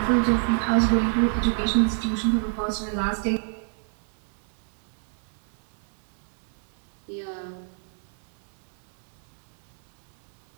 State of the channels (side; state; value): left; silent; 60 dB below the other